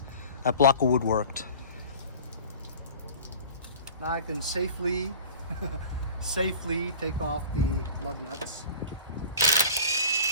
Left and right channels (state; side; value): inverted; both; correlation -0.41